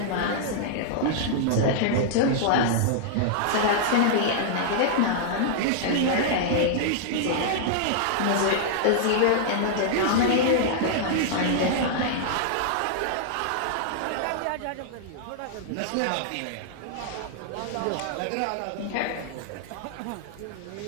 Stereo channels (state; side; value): different; both; correlation -0.01